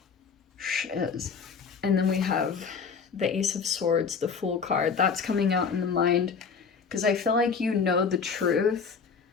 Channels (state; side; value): quieter; right; 5.7 dB